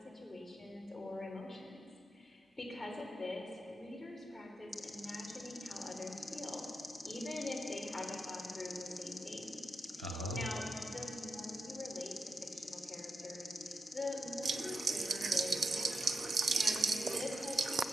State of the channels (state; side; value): normal; both; correlation 0.86